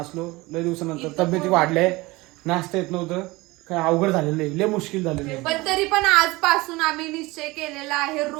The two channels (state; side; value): quieter; left; 21.7 dB